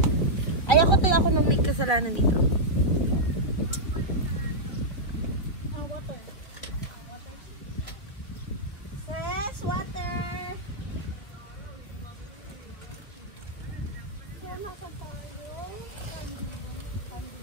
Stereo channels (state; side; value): late; right; 2.3 ms